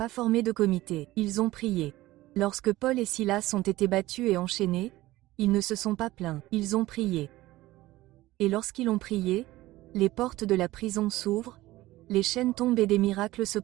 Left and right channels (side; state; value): left; quieter; 17.4 dB